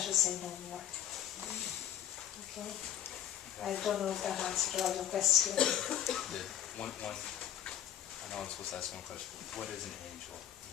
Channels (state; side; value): quieter; right; 10.6 dB